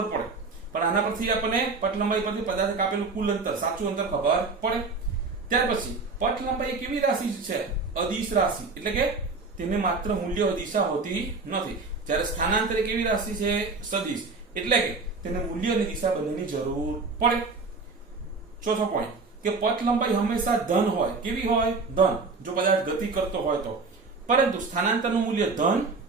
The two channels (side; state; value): left; quieter; 4.1 dB